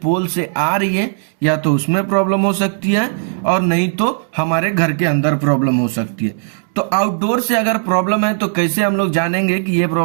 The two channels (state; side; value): silent; left; 68 dB below the other